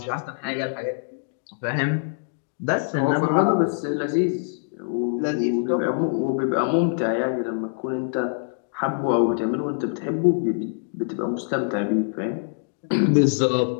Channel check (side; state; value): right; silent; digital silence